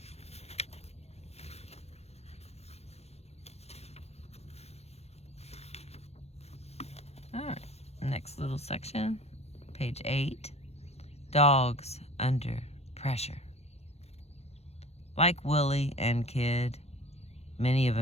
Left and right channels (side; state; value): right; late; 0.31 ms